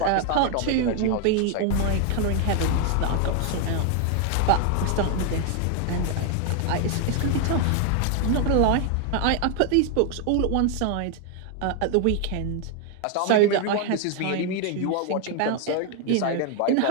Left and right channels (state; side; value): different; both; correlation 0.00